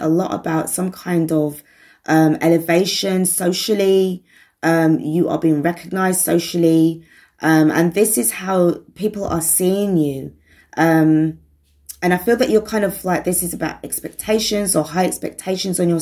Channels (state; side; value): identical; both; correlation 1.00